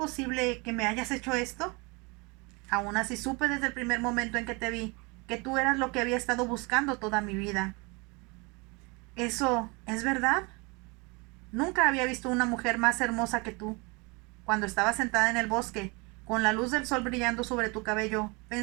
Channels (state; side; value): quieter; left; 28.4 dB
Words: que me hayas hecho esto? Aún así supe desde el primer momento en que te vi que tú eras lo que había estado buscando toda mi vida. ¿Eso es verdad? Nunca había visto una mujer más hermosa que tú. Cuando estaba sentada en el bosque, con la luz del sol brillando sobre tu cabello,